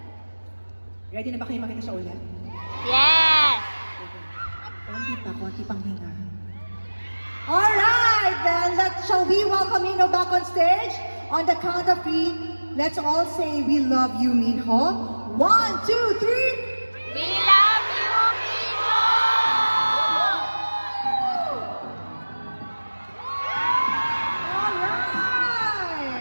Ready na ba kayo makita siya ulit? Yes! Konti pang hinga. Alright then, shall we welcome Minho back on stage? On the count of 3, let's all say we love you, Minho. 1, 2, 3. We love you, Minho! Alright!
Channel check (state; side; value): inverted; both; correlation -1.00